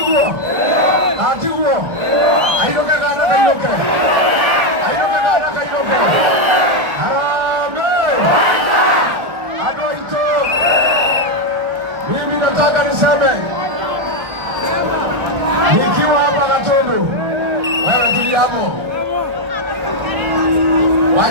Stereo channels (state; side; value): late; left; 1.3 ms